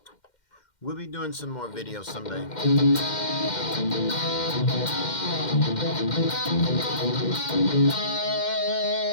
we'll be doing some more videos someday.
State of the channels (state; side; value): late; right; 2.1 ms